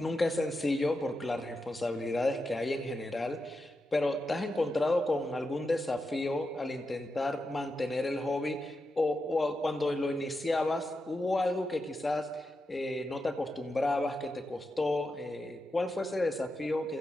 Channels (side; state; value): both; normal; correlation 0.88